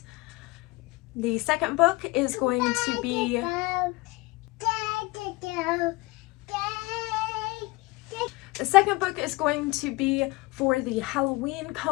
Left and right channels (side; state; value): right; quieter; 22.9 dB